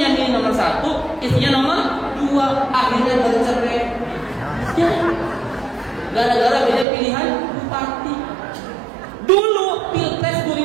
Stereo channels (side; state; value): left; drops out; at 6.9 s